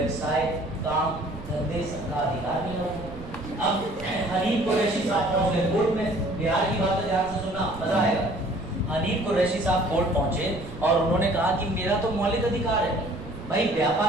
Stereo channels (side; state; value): right; noise; rumble, 14 dB below the sound